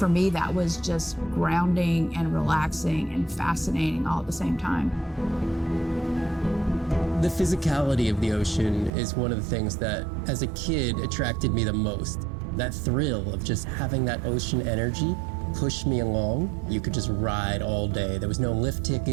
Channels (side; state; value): left; drops out; at 8.9 s